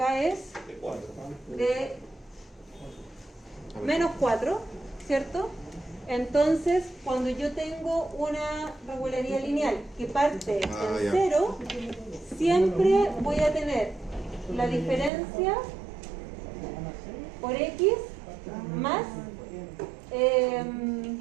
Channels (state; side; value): drops out; left; at 15.1 s